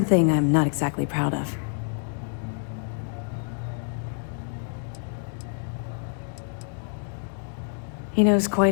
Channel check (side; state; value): right; silent; 60 dB below the other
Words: I'm not exactly proud of. He knows